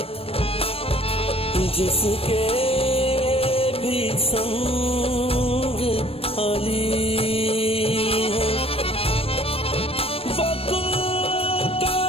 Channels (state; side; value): late; right; 0.28 ms